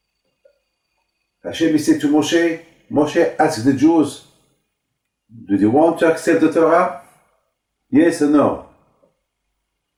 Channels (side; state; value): both; identical; correlation 1.00